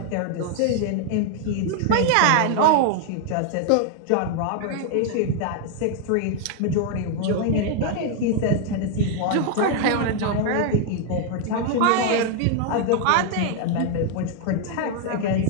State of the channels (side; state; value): both; different; correlation 0.00